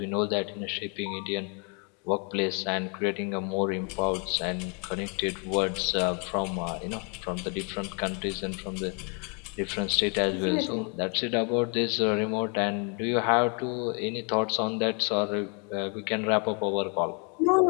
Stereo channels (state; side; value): quieter; right; 36.6 dB